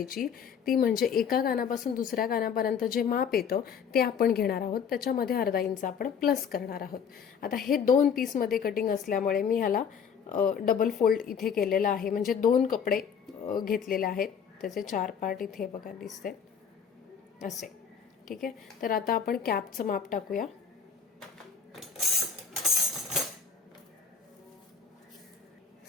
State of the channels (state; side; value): quieter; right; 7.0 dB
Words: ती म्हणजे एका कानापासून दुसऱ्या कानापर्यंत जे माप येतं ते आपण घेणार आहोत, त्याच्यामध्ये अर्धा इंच आपण प्लस करणार आहोत। आता हे 2 पीसमध्ये कटिंग असल्यामुळे मी ह्याला डबल फोल्ड इथे केलेला आहे, म्हणजे 2 कपडे घेतलेले आहेत, त्याचे 4 पार्ट इथे बघा दिसते असे। ठीक आहे, तर आता आपण कॅपचं माप टाकूया।